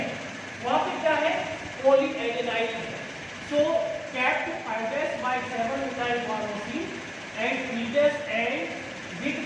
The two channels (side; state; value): both; identical; correlation 1.00